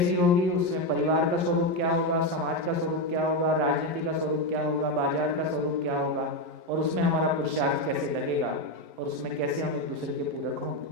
होगी, उसमें परिवार का स्वरूप क्या होगा, समाज का स्वरूप क्या होगा, राजनीति का स्वरूप क्या होगा, बाजार का स्वरूप क्या होगा, और उसमें हमारा पुरुषार्थ कैसे लगेगा, और उसमें कैसे हम एक दूसरे के पूरक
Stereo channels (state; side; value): late; left; 11 ms